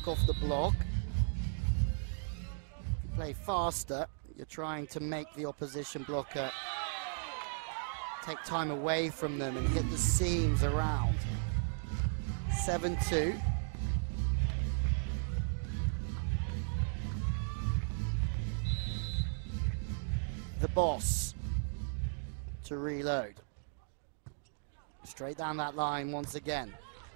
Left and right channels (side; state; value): left; silent; digital silence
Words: off the block. If you play faster, you're trying to make the opposition blocker take time away from them and hit the seams around. 7-2. The boss to reload. Straight down that line once again.